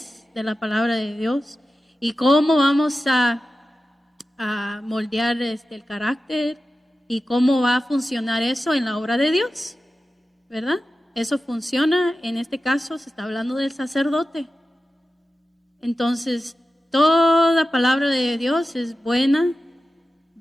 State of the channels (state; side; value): normal; both; correlation 0.93